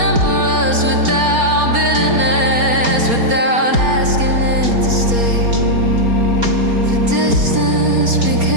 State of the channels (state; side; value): late; left; 4.3 ms